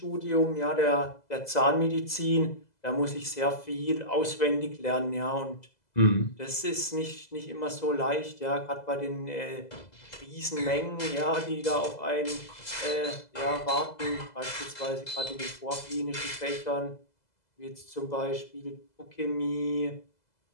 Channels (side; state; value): right; late; 2.0 ms